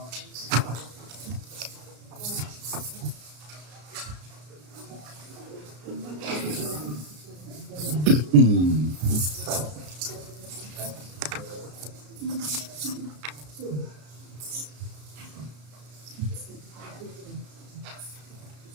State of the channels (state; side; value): late; left; 33 ms